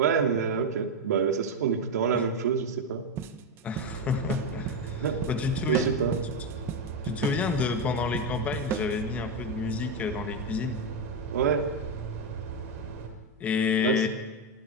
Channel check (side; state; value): both; normal; correlation 0.07